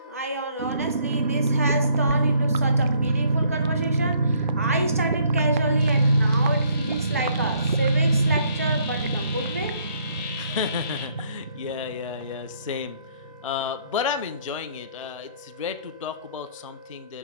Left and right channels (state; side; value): inverted; both; correlation -0.66